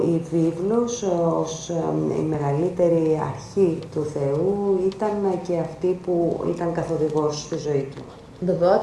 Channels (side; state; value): both; identical; correlation 1.00